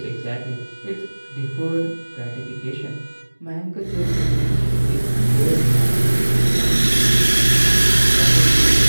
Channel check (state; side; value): inverted; both; correlation -1.00